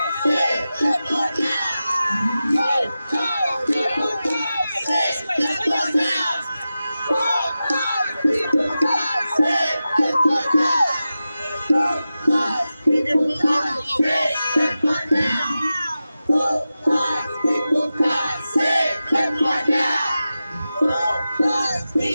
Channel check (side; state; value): both; inverted; correlation -0.94